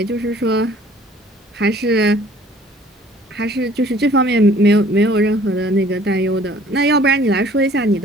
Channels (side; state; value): both; normal; correlation 0.54